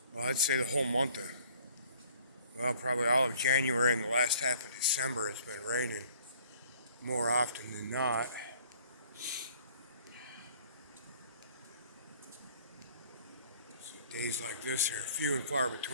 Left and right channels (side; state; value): both; inverted; correlation -0.55